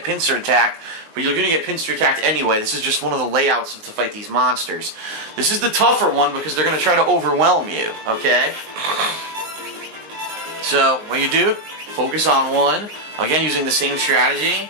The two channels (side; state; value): left; late; 19 ms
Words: pincer attacked, but you're going to get pincer attacked anyway. This is just one of the layouts to fight these monsters. This is the tougher one because they're going to try to overwhelm you, okay? So what you do, focus on one. Again, using the same strategy.